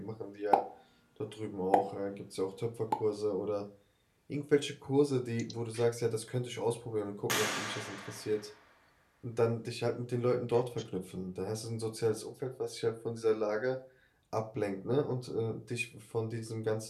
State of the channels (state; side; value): identical; both; correlation 1.00